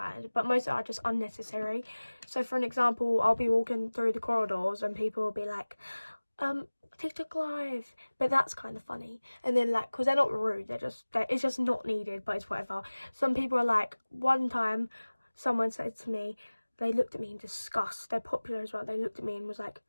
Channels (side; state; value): both; inverted; correlation -1.00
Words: but most are just unnecessary. So for an example, I'll be walking through the corridors and people will be like, TikTok live, but that's kind of funny. And then like, because they're not rude, it's just not needed, but it's whatever. Some people are like, one time someone said to me, they looked at me in disgust, they're popular as well, they looked at me and was like,